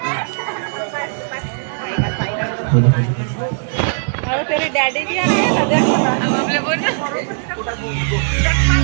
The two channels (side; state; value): left; silent; digital silence